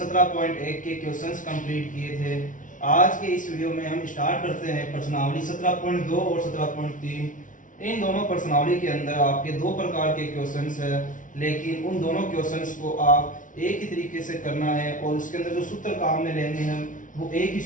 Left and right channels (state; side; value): late; right; 0.38 ms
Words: के क्वेश्चंस कंप्लीट किए थे। आज के इस वीडियो में हम स्टार्ट करते हैं प्रश्नावली 17.2 और 17.3। इन दोनों प्रश्नावली के अंदर आपके दो प्रकार के क्वेश्चंस है, लेकिन उन दोनों क्वेश्चंस को आप एक ही तरीके से करना है और उसके अंदर जो सूत्र काम में लेंगे हम वो एक ही